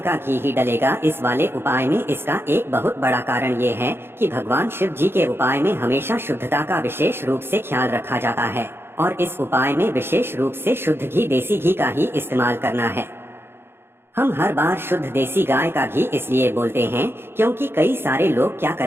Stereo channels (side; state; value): left; late; 0.11 ms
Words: घी ही डलेगा इस वाले उपाय में। इसका एक बहुत बड़ा कारण ये है कि भगवान शिव जी के उपाय में हमेशा शुद्धता का विशेष रूप से ख्याल रखा जाता है और इस उपाय में विशेष रूप से शुद्ध घी, देसी घी का ही इस्तेमाल करना है। हम हर बार शुद्ध देसी गाय का घी इसलिए बोलते हैं क्योंकि कई सारे लोग क्या